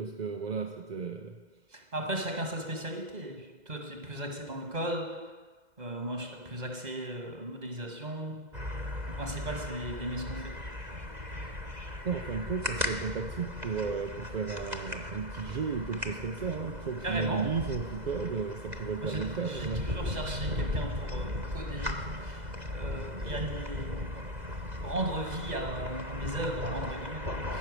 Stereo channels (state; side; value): late; left; 2.0 ms